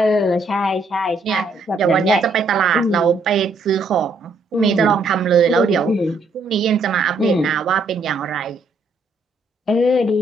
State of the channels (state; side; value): quieter; left; 3.1 dB